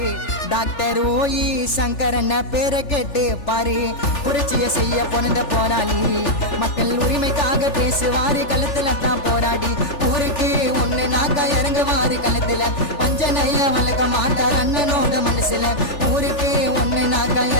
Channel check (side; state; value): right; late; 3.4 ms